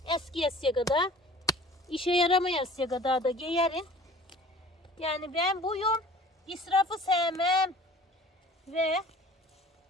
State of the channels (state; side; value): normal; both; correlation 0.47